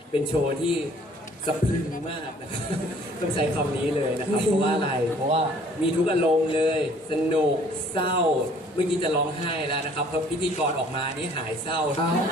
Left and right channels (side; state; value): both; normal; correlation 0.57